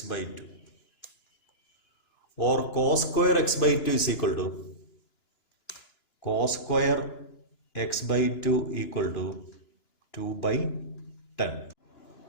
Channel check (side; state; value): right; late; 2.9 ms